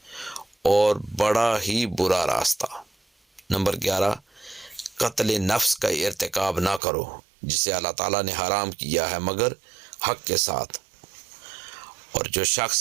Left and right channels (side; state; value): left; drops out; at 6.8 s